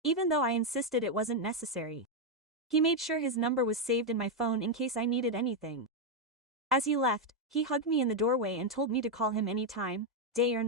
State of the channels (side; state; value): both; normal; correlation 0.02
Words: even though I insisted it wasn't necessary. He made sure his number was saved in my phone in case I needed anything. As he left, he hugged me in the doorway and told me to call him anytime, day or